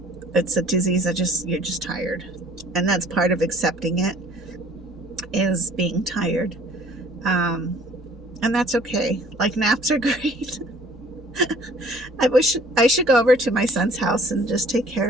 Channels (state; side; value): normal; both; correlation 0.54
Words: it's a disease that you're just tired. And that's part of accepting it, is being tired. And that's okay. Like, naps are great. I wish I should go over to my son's house and just take